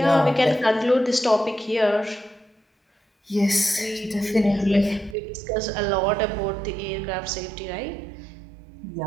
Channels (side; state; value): left; drops out; at 5.2 s